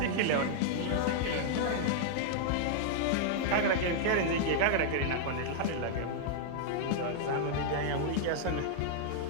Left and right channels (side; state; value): both; different; correlation -0.01